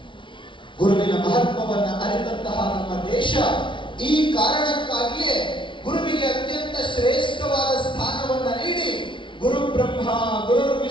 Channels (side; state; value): right; late; 0.24 ms